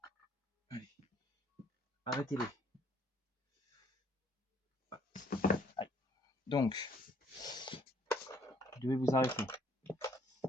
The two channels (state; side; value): normal; both; correlation 0.63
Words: Allez. Arrêtez-les. Allez. Donc, vous devez vous arrêter.